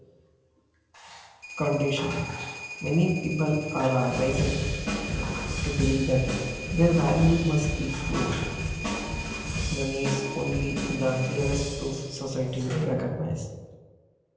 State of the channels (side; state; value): both; identical; correlation 1.00